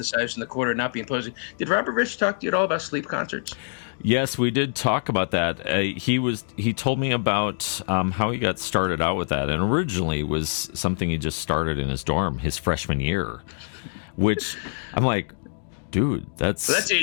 in the corner, not be imposing. Did Robert Rich talk to you at all about sleep concerts? Yes, we did talk about that. He told me about how he got started out with that, and originally was something he just started in his dorm his freshman year, which I'm like, dude, that's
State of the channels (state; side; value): silent; right; digital silence